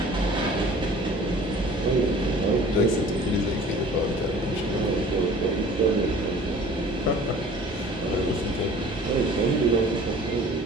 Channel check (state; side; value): normal; both; correlation 0.47